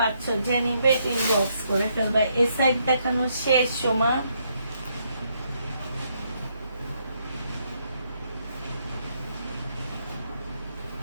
যে নিবে ইনবক্স করে ফেলবা। এ সাইড দেখানো শেষ সময়।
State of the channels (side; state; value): both; inverted; correlation -0.75